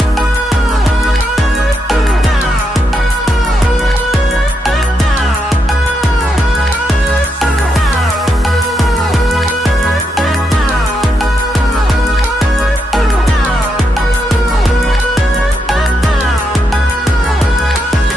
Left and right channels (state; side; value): normal; both; correlation 0.81